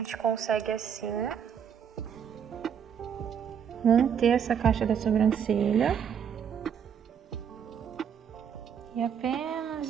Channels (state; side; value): quieter; left; 7.9 dB